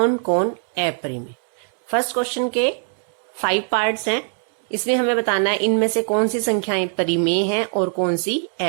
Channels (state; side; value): silent; left; 56 dB below the other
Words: कौन अपरिमेय। फर्स्ट क्वेश्चन के 5 पार्ट्स हैं। इसमें हमें बताना है इनमें से कौन सी संख्याएं परिमेय हैं और कौन सी